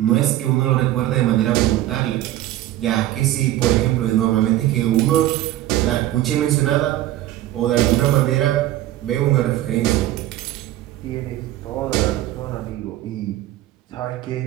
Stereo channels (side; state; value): left; quieter; 14.3 dB